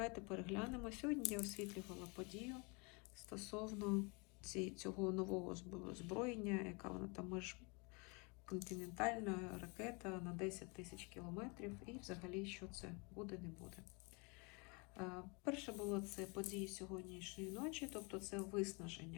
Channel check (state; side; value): quieter; right; 30.7 dB